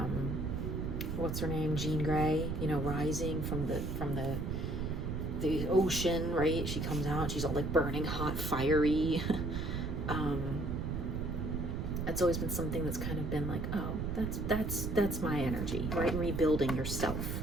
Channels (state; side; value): noise; right; rumble, 2 dB below the sound